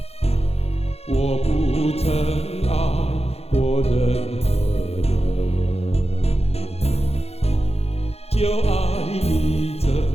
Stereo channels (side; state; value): right; late; 0.30 ms